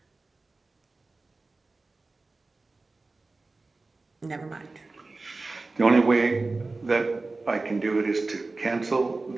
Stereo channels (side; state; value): left; quieter; 3.5 dB